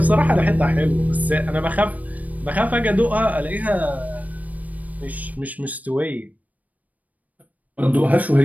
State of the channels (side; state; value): left; late; 0.074 ms